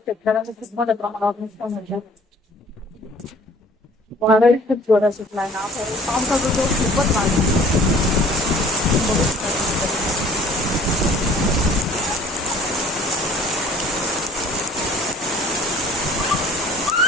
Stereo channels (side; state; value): both; normal; correlation 0.52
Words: खूप मोठ्या प्रमाणावर नुकसान होतं. वादळी खूप जोरात सुटलाय ना, पावसाचा जोर खूपच वाढला. बघू शकता.